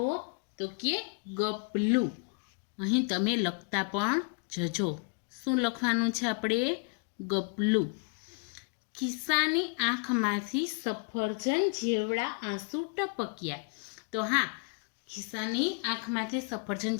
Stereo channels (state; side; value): quieter; right; 36.0 dB